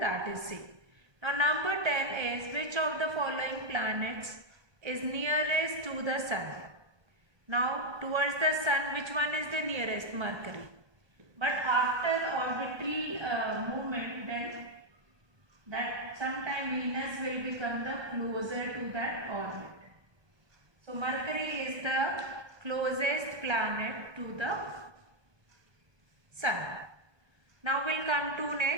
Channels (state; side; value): late; left; 1.2 ms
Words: that is same. Now number 10 is which of the following planets is nearest to the sun? Now towards the sun, which one is the nearest? Mercury. But after orbital movement, then that sometime Venus will become the closer to that orbit. So Mercury is the closest planet to the sun. Now we'll come to